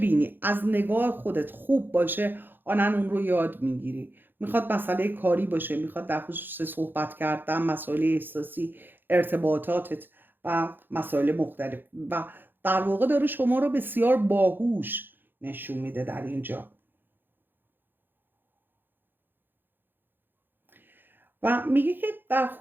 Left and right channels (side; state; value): left; late; 0.096 ms